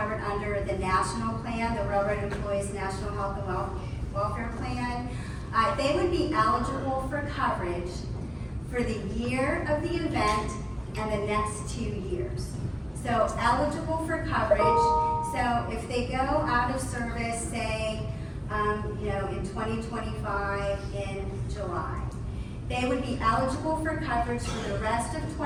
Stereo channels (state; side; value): identical; both; correlation 1.00